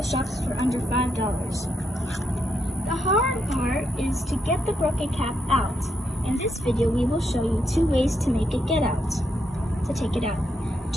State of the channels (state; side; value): normal; both; correlation 0.80